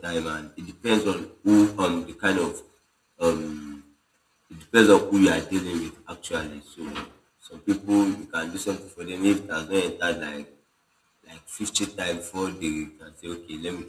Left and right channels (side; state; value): both; identical; correlation 1.00